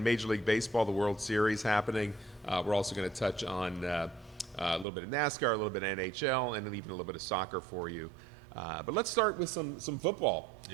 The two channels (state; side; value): drops out; left; at 4.9 s